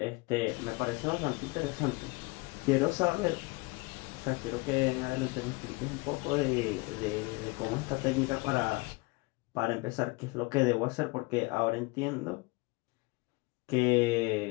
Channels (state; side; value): quieter; right; 25.5 dB